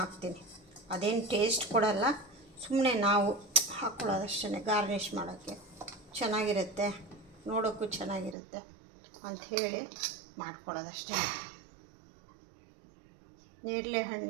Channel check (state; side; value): drops out; left; at 8.3 s